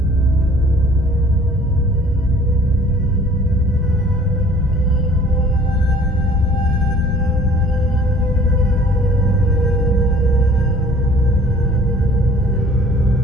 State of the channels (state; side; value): normal; both; correlation 0.53